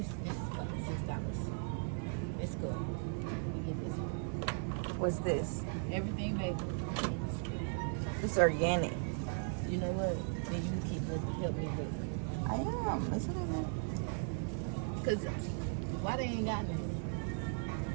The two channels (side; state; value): left; silent; 53 dB below the other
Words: is fucking $6. It's good. We get this one. What's this? Everything bagel. It's organic. You know what? Then you keep help me with it. I am. It's in there. Cause why they ain't got nothing?